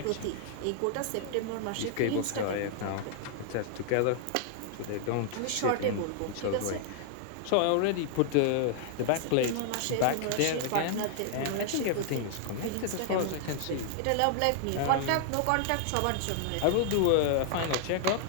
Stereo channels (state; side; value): different; both; correlation 0.00